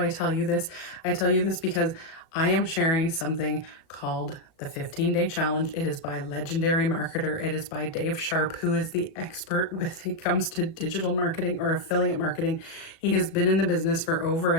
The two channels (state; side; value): late; right; 37 ms